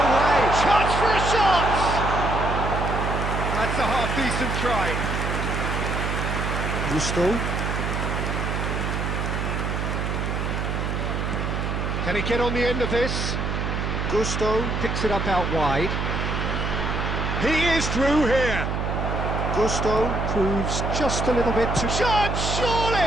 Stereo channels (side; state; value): right; noise; hum, 1 dB below the sound